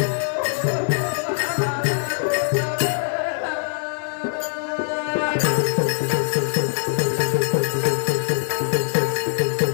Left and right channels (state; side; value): silent; right; digital silence